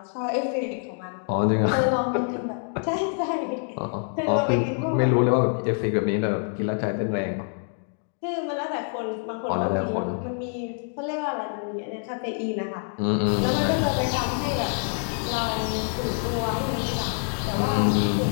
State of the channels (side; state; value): right; silent; 56 dB below the other